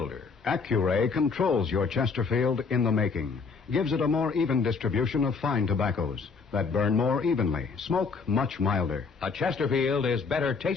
Accuray controls your Chesterfield in the making. Gives it a more even distribution of fine tobaccos that burn more evenly, smoke much milder. A Chesterfield is better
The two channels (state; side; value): quieter; right; 4.9 dB